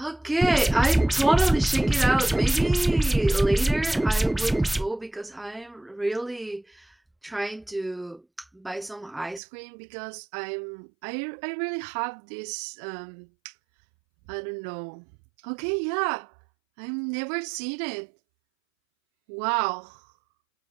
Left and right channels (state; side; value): drops out; left; at 9.4 s